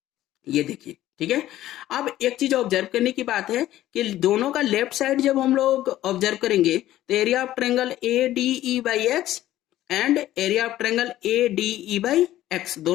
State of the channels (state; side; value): quieter; right; 14.0 dB